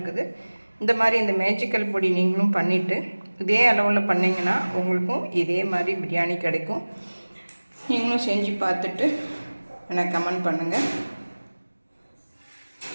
இந்த மாதிரி இந்த மேஜிக்கல் பொடி நீங்களும் பண்ணிவிட்டு இதே அளவில் பண்ணிங்கன்னா உங்களுக்கும் இதே மாதிரி பிரியாணி கிடைக்கும். நீங்களும் செஞ்சு பார்த்துட்டு எனக்கு கமெண்ட் பண்ணுங்கள்.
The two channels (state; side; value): inverted; both; correlation -1.00